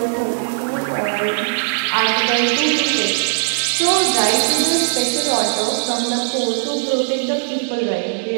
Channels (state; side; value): silent; left; digital silence